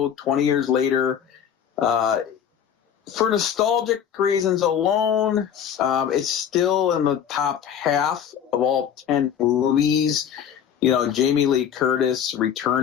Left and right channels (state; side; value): quieter; right; 8.6 dB